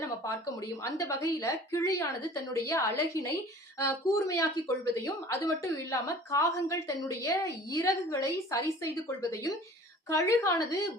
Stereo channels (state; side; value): normal; both; correlation 0.46